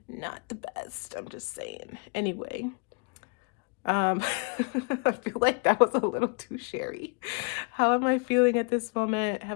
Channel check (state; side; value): quieter; right; 35.7 dB